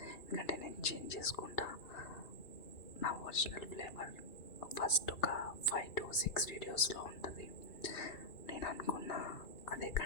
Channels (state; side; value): late; right; 2.6 ms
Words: ఎందుకంటే నేను చేంజ్ చేసుకుంటా నా ఒరిజినల్ ఫ్లేవర్. ఫస్ట్ ఒక 5 to 6 వీడియోస్లో ఉంటుంది. నేను అనుకున్నా అదే